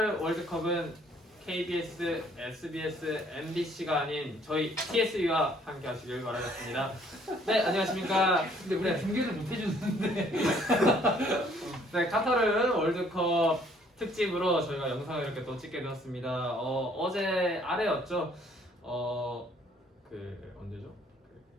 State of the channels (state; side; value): normal; both; correlation 0.62